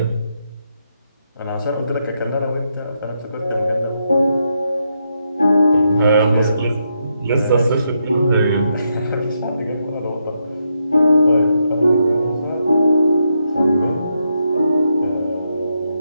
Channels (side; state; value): both; inverted; correlation -0.81